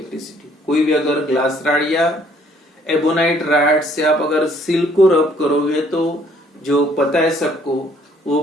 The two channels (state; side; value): normal; both; correlation 0.62